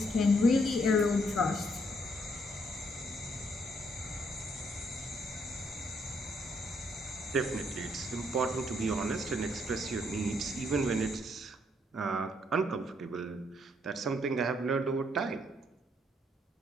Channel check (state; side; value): normal; both; correlation 0.71